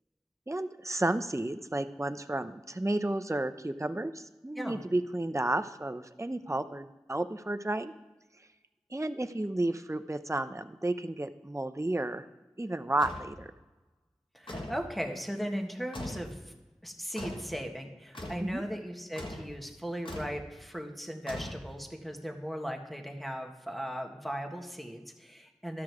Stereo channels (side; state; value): both; normal; correlation 0.90